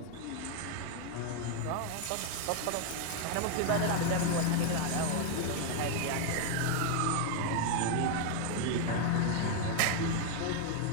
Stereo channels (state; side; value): different; both; correlation 0.00